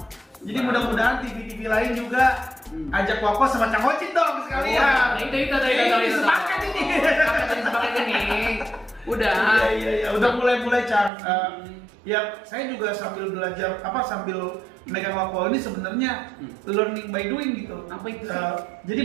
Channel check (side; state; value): left; drops out; at 11.1 s